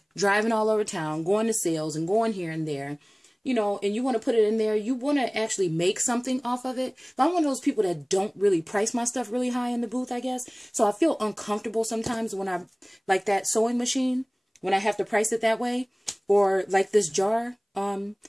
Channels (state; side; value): identical; both; correlation 1.00